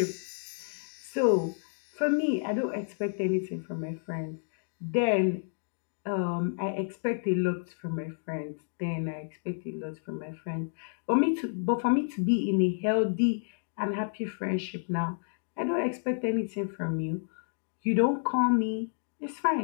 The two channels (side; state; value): right; silent; digital silence